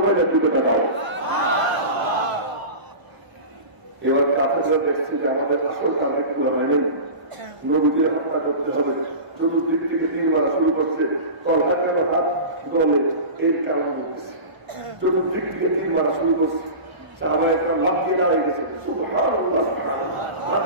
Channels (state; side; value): late; left; 1.0 ms